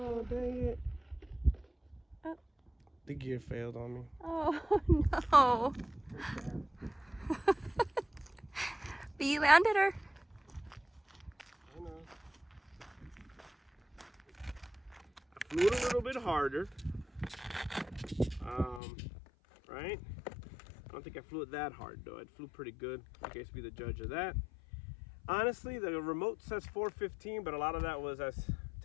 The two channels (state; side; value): drops out; right; at 18.8 s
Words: dang it. Oh. The gear failed on me. Oh no. But you landed her. I know. I flew it a little bit harder. Right? I don't think I flew it that hard though. I flew pretty good. You guys be the judge of that. Honestly, the remote says 415, but a lot of that was us